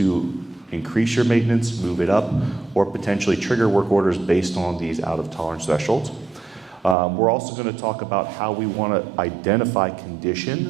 increase your maintenance, move it up, or potentially trigger work orders based on these out-of-tolerance thresholds. We're also going to talk about how we want to identify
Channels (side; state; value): left; drops out; at 7.0 s